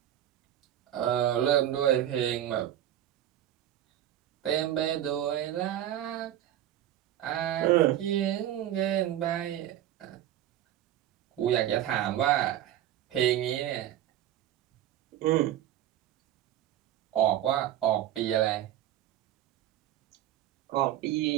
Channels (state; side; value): quieter; left; 12.1 dB